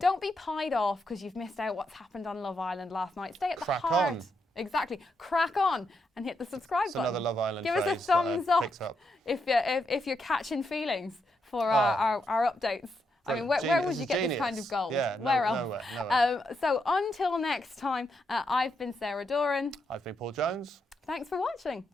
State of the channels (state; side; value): normal; both; correlation 0.81